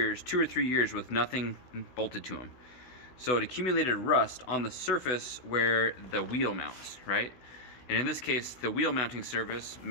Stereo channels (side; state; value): right; late; 16 ms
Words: or 3 years with nothing bolted to them. So it accumulated rust on the surface where the wheel mounts, right? And in this case, the wheel mounting surface